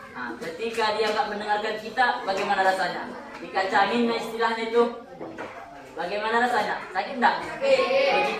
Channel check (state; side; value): identical; both; correlation 1.00